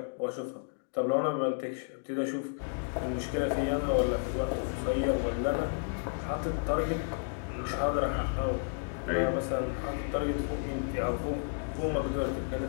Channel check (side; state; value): right; silent; digital silence